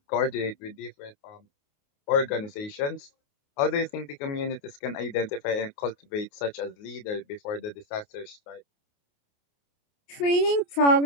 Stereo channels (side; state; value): right; late; 28 ms